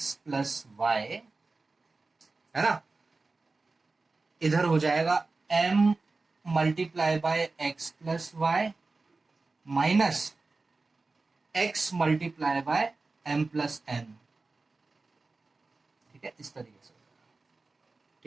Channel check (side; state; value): left; quieter; 3.7 dB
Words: plus y, है ना, इधर हो जाएगा m multiply by x plus y minus x multiply by m plus n, ठीक है, इस तरीके से,